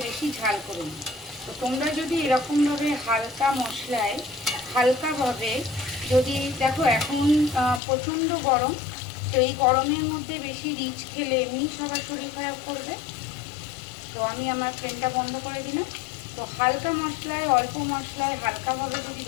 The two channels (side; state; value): right; drops out; at 7.8 s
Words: বেশি ঝাল করুন। তো তোমরা যদি এরকমভাবে হালকা মশলায় হালকাভাবে যদি দেখো, এখন প্রচণ্ড গরম, তো এই গরমের মধ্যে বেশি রিচ খেলে এমনি সবার শরীর খারাপ করবে। তো আমি আমার ফ্লেমটা বন্ধ করে দিলাম। তো হালকা মশলায় অল্প মশলায় হালকাভাবে যদি